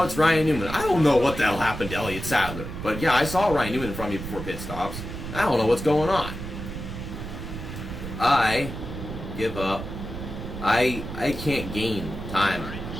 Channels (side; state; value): right; noise; rumble, 8 dB below the sound